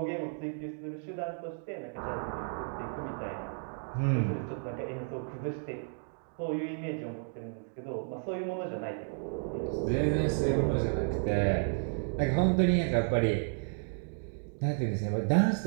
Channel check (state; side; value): silent; left; 56 dB below the other